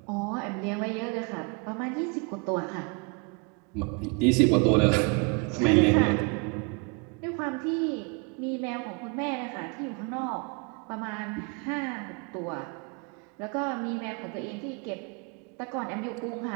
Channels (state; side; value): quieter; left; 31.6 dB